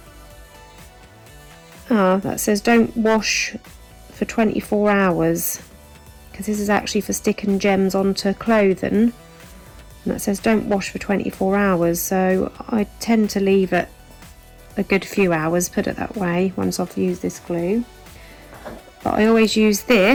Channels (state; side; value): identical; both; correlation 1.00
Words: That says don't wash for 24 hours, because this is actually for sticking gems onto clothing, and that says don't wash for 24 hours, so I tend to leave it a good few hours, put it that way, once I've used this glue. But I always use